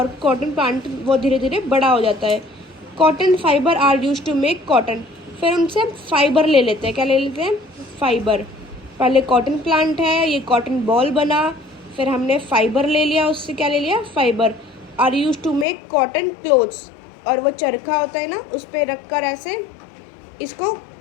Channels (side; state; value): right; drops out; at 15.7 s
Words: कॉटन प्लांट वो धीरे धीरे बड़ा हो जाता है। Cotton fibre are use to make cotton, फिर उनसे हम फाइबर ले लेते हैं। क्या ले लेते हैं? फाइबर। पहले कॉटन प्लांट है, ये कॉटन बॉल बना, फिर हमने फाइबर ले लिया, उससे क्या ले लिया? Fibre. Are use to make cotton clothes, और वो चरखा होता है ना उस पर रख कर ऐसे इसको